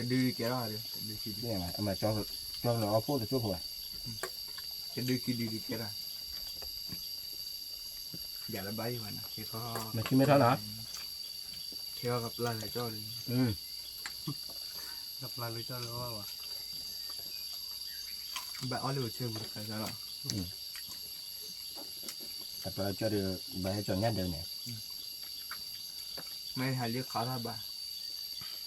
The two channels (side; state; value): both; identical; correlation 1.00